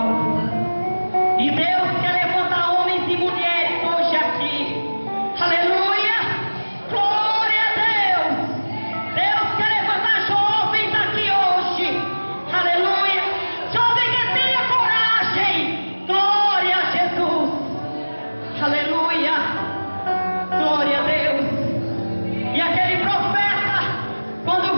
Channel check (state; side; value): inverted; both; correlation -1.00